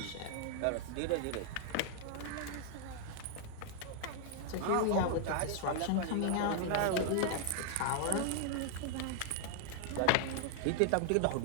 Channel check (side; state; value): both; different; correlation 0.00